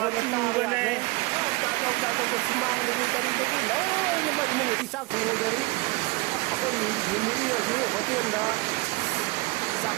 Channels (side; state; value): left; quieter; 23.8 dB